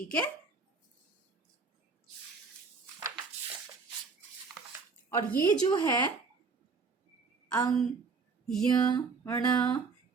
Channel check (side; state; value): left; quieter; 4.7 dB